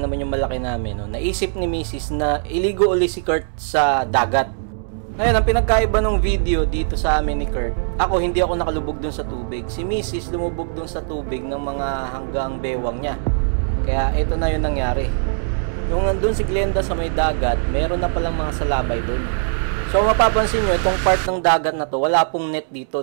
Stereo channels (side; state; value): left; silent; 65 dB below the other